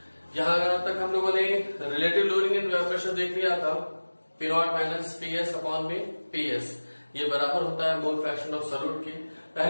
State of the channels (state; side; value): inverted; both; correlation -1.00